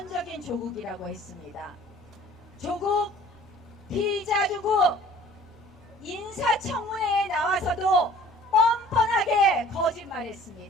조국이라고 했습니다. 조국, 피의자 조국 인사청문회에 나와서도 뻔뻔하게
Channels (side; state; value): both; normal; correlation 0.50